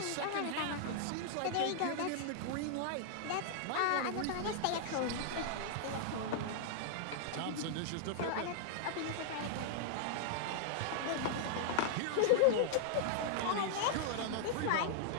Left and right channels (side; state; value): both; different; correlation -0.01